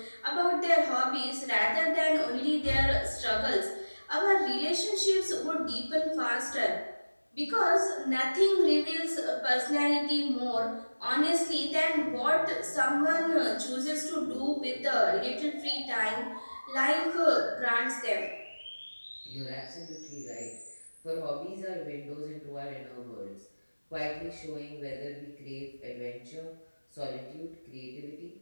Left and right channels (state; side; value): inverted; both; correlation -1.00